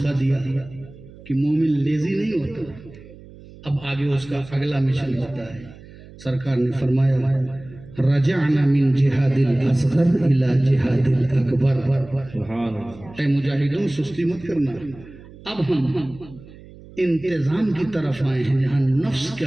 دیا کہ مومن لیزی نہیں ہوتا، اب آگے اس کا اگلا مشن ہوتا ہے. سرکار نے فرمایا رجعنا من جہاد الاصغر الى جہاد الاکبر. سبحان اللہ. اے مجاہدوں سستی مت کرنا، اب ہم انتظام کی طرف آئے ہیں جہاں نفس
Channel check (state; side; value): noise; right; hum, 20 dB below the sound